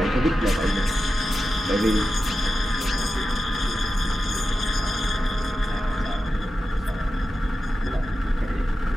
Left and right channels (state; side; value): normal; both; correlation 0.92